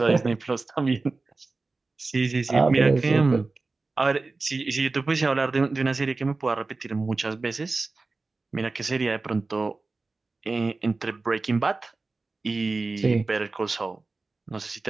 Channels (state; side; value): quieter; left; 3.7 dB